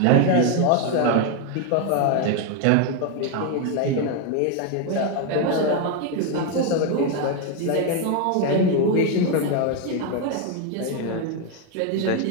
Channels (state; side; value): different; both; correlation 0.01